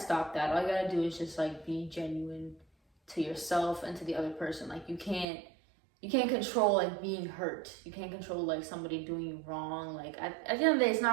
that. All you gotta do is just like be genuine to yourself and to the other person. Like you can't control like being hurt. You can't control like somebody doing you wrong. Like at the end of the day, it's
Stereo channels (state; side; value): drops out; left; at 5.2 s